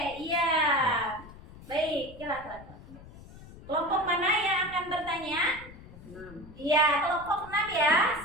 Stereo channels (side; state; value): left; noise; rumble, 18 dB below the sound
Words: iya. Baik, silakan. Kelompok mana yang akan bertanya? 6. Iya, kelompok 6 ya.